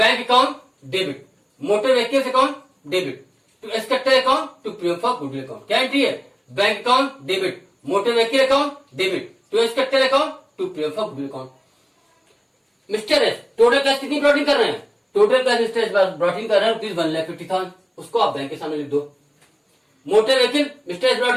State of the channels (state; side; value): identical; both; correlation 1.00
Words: account debit, motor vehicles account debit to S capital account to premium for goodwill account. क्या एंट्री है? Bank account debit, motor vehicle account debit to S capital account to premium for goodwill account. Mister S total cash कितनी brought in कर रहे हैं? Total cash mister S brought in कर रहे हैं ₹1,50,000, उसको आप बैंक के सामने लिख दो। Motor vehicle mister S